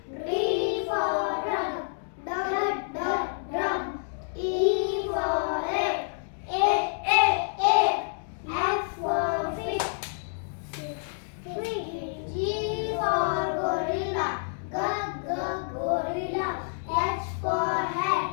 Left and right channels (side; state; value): right; silent; digital silence